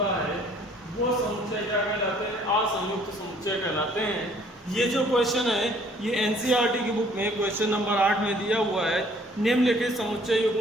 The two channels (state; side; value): normal; both; correlation 0.58